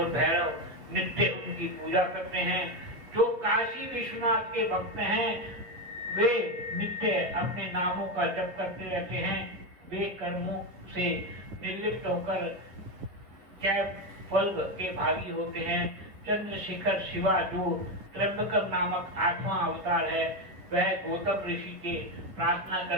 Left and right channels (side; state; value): left; late; 7.9 ms